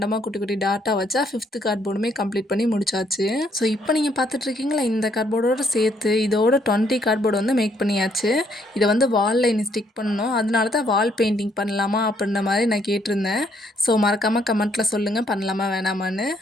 குட்டி குட்டி டாட்டா வச்சா 5th கார்ட்போர்டுமே கம்ப்ளீட் பண்ணி முடிச்சாச்சு. ஸோ இப்போ நீங்கள் பார்த்துட்ருக்கீங்களா, இந்த கார்ட்போர்டோடு சேர்த்து இதோட 20 கார்ட்போர்டு வந்து மேக் பண்ணியாச்சு. இதை வந்து வாலில் இனி ஸ்டிக் பண்ணணும். அதனால தான் வால் பெயிண்டிங் பண்ணலாமா அப்படின்ற மாதிரி நான் கேட்டிருந்தேன். ஸோ மறக்காமல் கமெண்ட்டில் சொல்லுங்கள், பண்ணலாமா வேணாமான்னு.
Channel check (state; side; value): normal; both; correlation 0.69